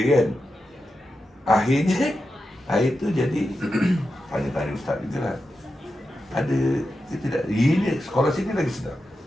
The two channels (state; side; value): normal; both; correlation 0.90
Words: Akhirnya, air tu jadi, tanya-tanya ustaz juga lah. Ada ke tidak? Ini sekolah sini lagi sedap.